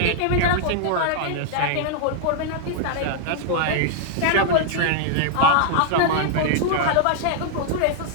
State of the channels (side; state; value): both; different; correlation -0.01